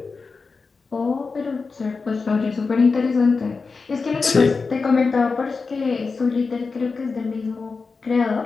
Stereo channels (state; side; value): quieter; right; 4.5 dB